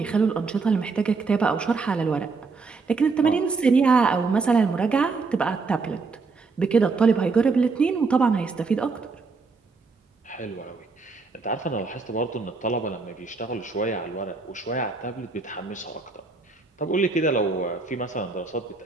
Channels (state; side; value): quieter; left; 4.3 dB